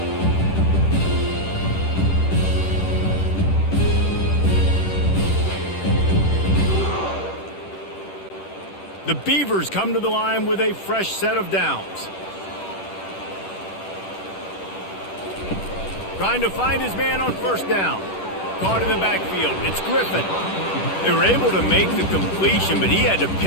The Beavers come to the line with a fresh set of downs. Trying to find his man on first down. Caught in the backfield. It's Griffin. They were able to make the completion, but he had to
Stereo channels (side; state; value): right; late; 10 ms